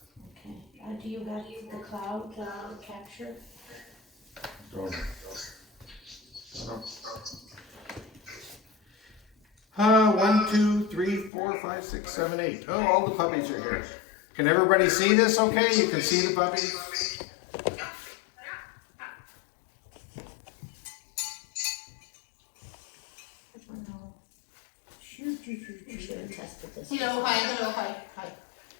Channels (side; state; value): right; drops out; at 11.3 s